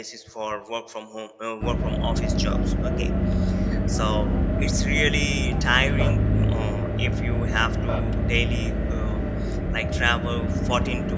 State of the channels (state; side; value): identical; both; correlation 1.00